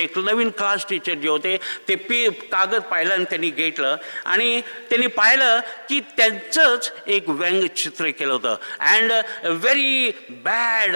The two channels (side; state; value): both; inverted; correlation -1.00